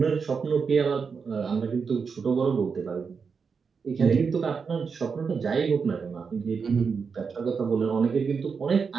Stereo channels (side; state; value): left; quieter; 5.6 dB